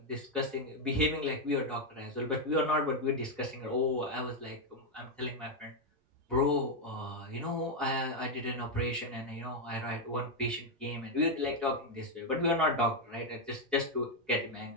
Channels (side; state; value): both; normal; correlation 0.02